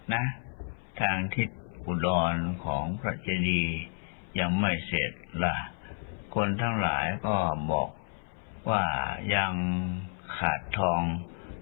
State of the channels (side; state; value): right; silent; 57 dB below the other